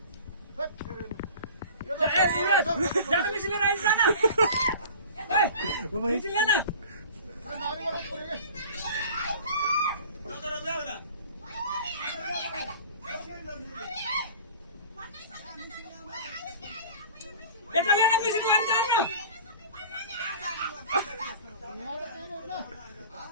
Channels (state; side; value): inverted; both; correlation -0.41